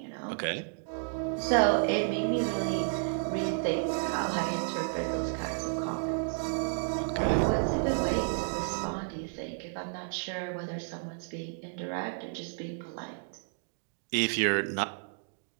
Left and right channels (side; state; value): left; silent; digital silence